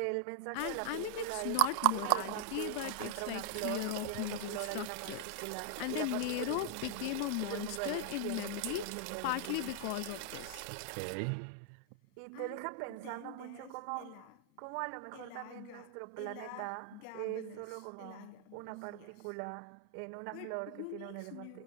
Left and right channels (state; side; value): different; both; correlation 0.00